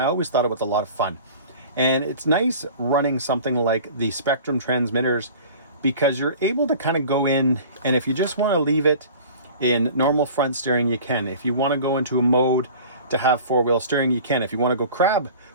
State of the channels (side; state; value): both; inverted; correlation -0.43